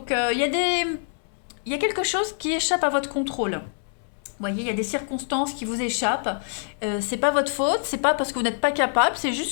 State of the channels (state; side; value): silent; right; 62 dB below the other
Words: il y a quelque chose qui échappe à votre contrôle. Vous voyez, il y a des circonstances qui vous échappent. C'est pas votre faute, c'est pas parce que vous n'êtes pas capable, c'est